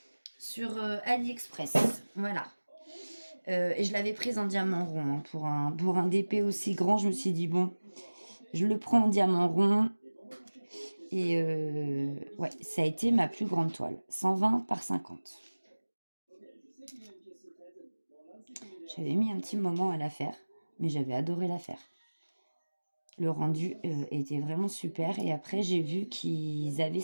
sur AliExpress. Voilà. Et je l'avais prise en diamant rond, hein, pour un DP aussi grand. Je me suis dit, bon, je le prends en diamant rond. Et ouais, ça a été ma plus grande toile. 120 par 50. J'avais mis un petit moment à la faire, mais j'avais adoré la faire. Le rendu était vraiment super. Et après, j'ai vu qu'ils avaient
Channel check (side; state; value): both; inverted; correlation -1.00